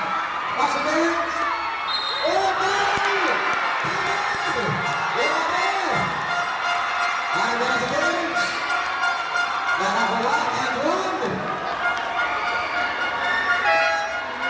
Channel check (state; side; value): identical; both; correlation 1.00